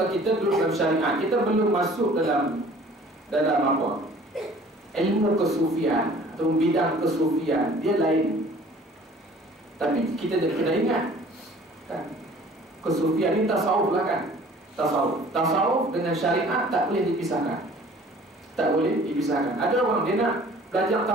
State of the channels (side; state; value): both; normal; correlation 0.50